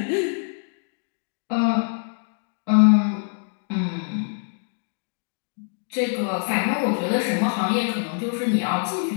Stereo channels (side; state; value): right; silent; digital silence